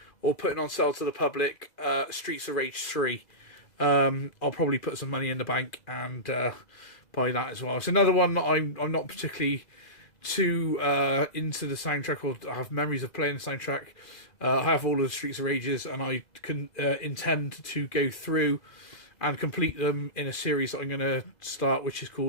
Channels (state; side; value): late; right; 2.4 ms